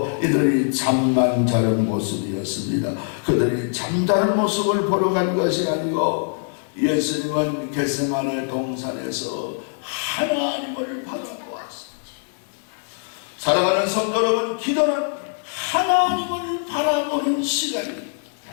이들이 잠만 자는 모습이었습니다. 그들이 잠자는 모습을 보러 간 것이 아니고 예수님은 겟세마네 동산에서 하나님을 바라보았습니다. 사랑하는 성도 여러분, 기도는 하나님을 바라보는 시간입니다.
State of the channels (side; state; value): right; silent; 64 dB below the other